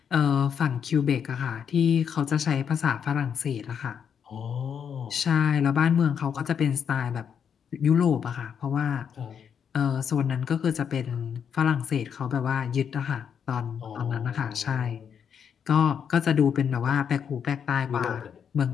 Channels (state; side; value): quieter; right; 7.6 dB